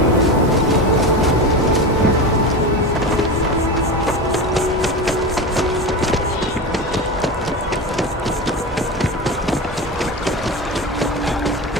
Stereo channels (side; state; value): both; normal; correlation 0.24